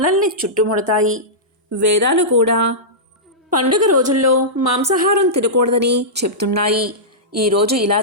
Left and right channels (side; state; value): both; normal; correlation -0.14